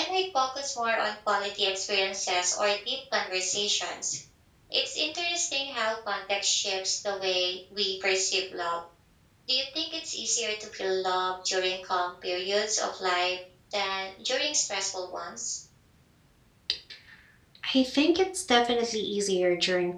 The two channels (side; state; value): both; identical; correlation 1.00